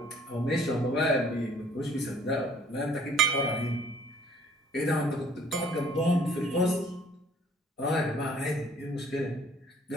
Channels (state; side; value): normal; both; correlation 0.56